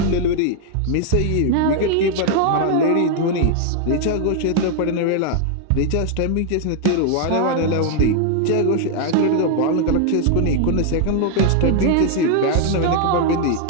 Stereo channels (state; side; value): different; both; correlation 0.00